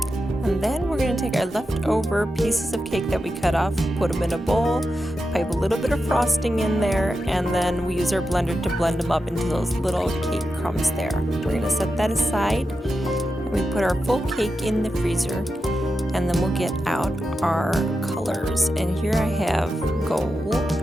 then we're going to take our leftover pieces of cake that we cut off, put them in a bowl, pipe a little bit of frosting in there, and then we use our blender to blend them up into those little cake crumbs there. We're going to set that aside and we put our full cake in the freezer. And then we'll get out our colors. And here I have gold.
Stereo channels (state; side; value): normal; both; correlation 0.89